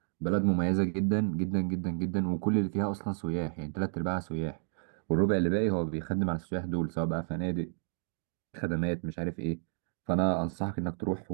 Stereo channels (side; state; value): left; silent; 57 dB below the other